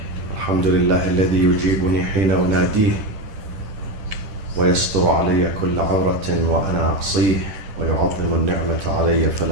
الحمد لله الذي يجيبني حين أناديه ويستر علي كل عورة وأنا أقصيه ويعظم النعمة علي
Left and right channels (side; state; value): left; late; 10 ms